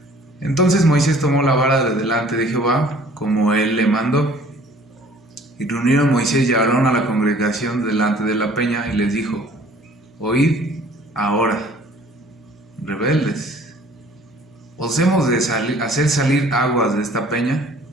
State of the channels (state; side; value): normal; both; correlation 0.53